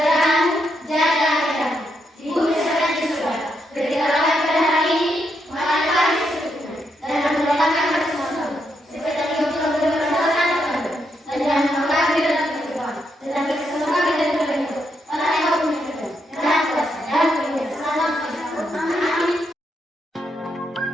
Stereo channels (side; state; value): both; normal; correlation 0.80